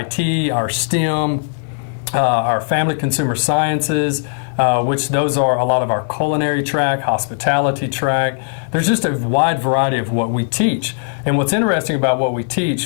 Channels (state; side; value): silent; right; 55 dB below the other